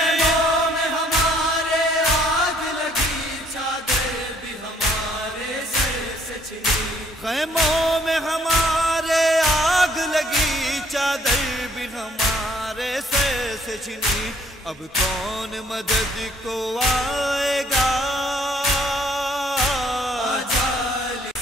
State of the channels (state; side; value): normal; both; correlation 0.63